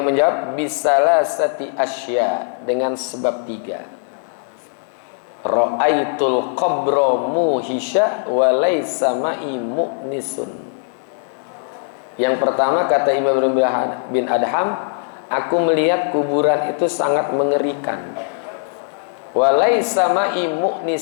menjawab, bisalasati asya, dengan sebab 3. Ra'aitul qabra muhisha wa laysa ma'i mu'nisun. Yang pertama, kata Imam Ibrahim bin Adham, aku melihat kuburan itu sangat mengerikan. Walaysa ma'i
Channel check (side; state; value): right; silent; 56 dB below the other